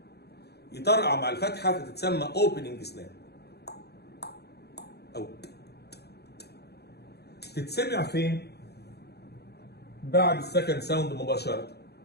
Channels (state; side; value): late; right; 0.48 ms